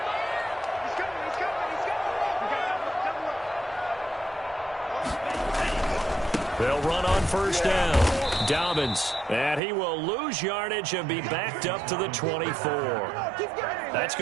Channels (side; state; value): left; drops out; at 9.6 s